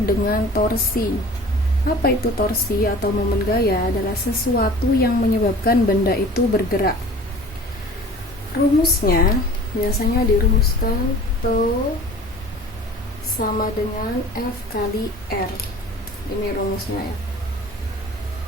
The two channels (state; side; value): normal; both; correlation 0.44